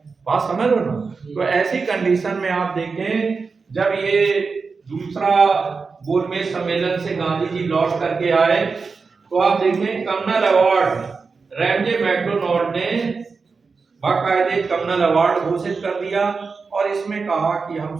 बात समझ लो ना। तो ऐसी कंडीशन में आप देखें, जब ये दूसरा गोलमेज सम्मेलन से गांधी जी लौट करके आए तो आप देखें कम्युनल अवार्ड रैमजे मैकडोनाल्ड ने बाकायदे कम्युनल अवार्ड घोषित कर दिया और इसमें कहा कि हम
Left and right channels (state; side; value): quieter; left; 4.7 dB